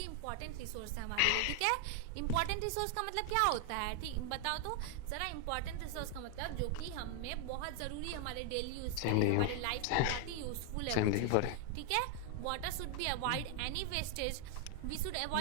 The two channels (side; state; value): both; different; correlation 0.00